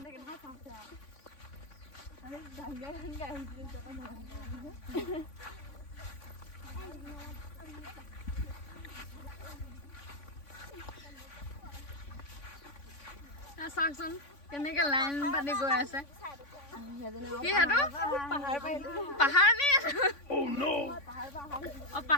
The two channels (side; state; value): right; late; 3.5 ms